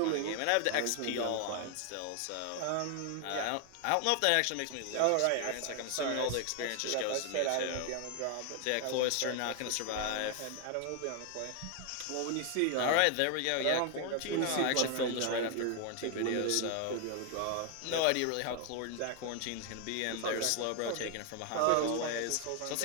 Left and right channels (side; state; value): both; different; correlation 0.00